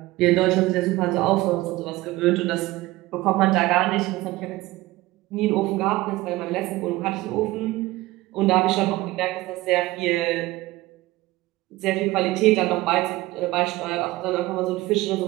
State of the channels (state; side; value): quieter; left; 18.9 dB